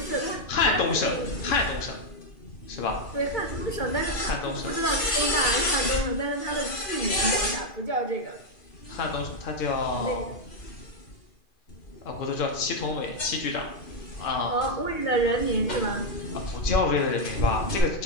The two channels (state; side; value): late; right; 2.5 ms